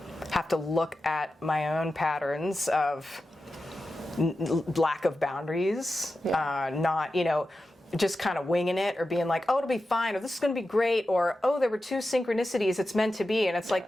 have to look at my own patterns of lack of boundaries, not, you know, just kind of winging it or being like, oh, it'll be fine, or this is going to be great, or oh, there were two synchronicities, it's meant to be. And it's like,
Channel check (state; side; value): normal; both; correlation 0.92